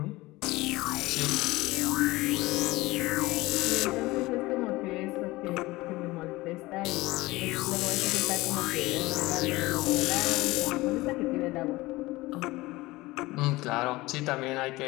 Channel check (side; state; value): right; quieter; 20.2 dB